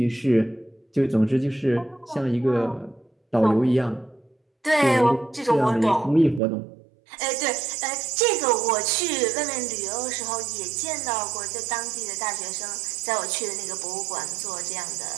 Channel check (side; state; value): left; drops out; at 6.4 s